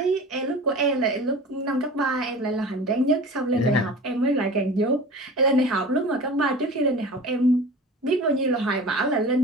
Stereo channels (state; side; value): normal; both; correlation 0.37